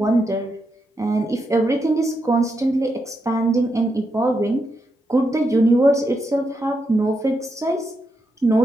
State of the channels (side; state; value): both; normal; correlation 0.83